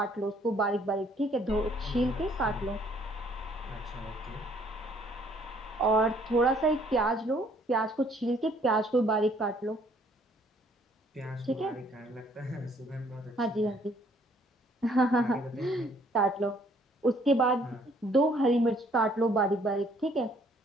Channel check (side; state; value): both; normal; correlation 0.63